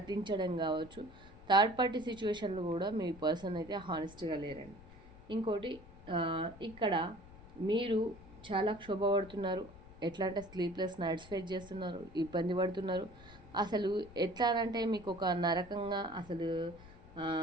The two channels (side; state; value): left; noise; rumble, 19 dB below the sound